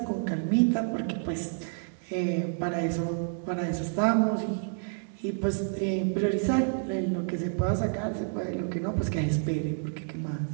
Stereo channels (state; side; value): silent; left; digital silence